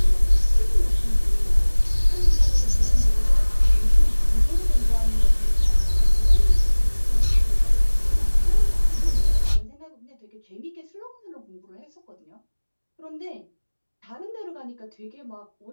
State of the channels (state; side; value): inverted; both; correlation -1.00